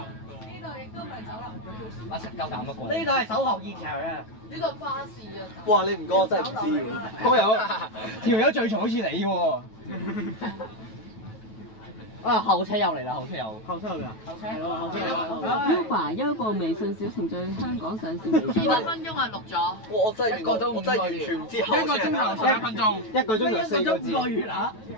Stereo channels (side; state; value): right; late; 9.2 ms